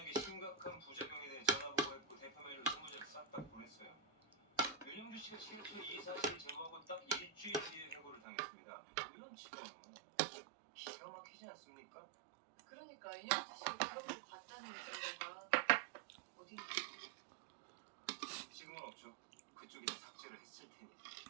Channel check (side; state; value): left; drops out; at 8.2 s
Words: 심각한 부작용에 대해 전화 보고했고 대표 메일로 20장 싹 다 보냈어요. 윤영주 씨가 실제 이 사실 제보하고 딱 일주일 뒤에 해고를 당했습니다. 이런 직원은 기가 막히지 않습니까? 그러니까 인영주 씨가 그런 걸 봤다는 증거가 어디 있는지. 지금은 없죠. 그쪽이 다 삭제를 했을 테니.